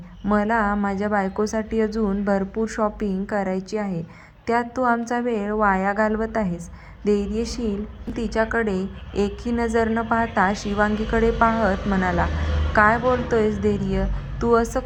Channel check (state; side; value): identical; both; correlation 1.00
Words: मला माझ्या बायकोसाठी अजून भरपूर शॉपिंग करायची आहे. त्यात तू आमचा वेळ वाया घालवत आहेस. धैर्यशील तिच्याकडे एकही नजर न पाहता शिवांगीकडे पाहत म्हणाला. काय बोलतोयस धैर्य? तू असं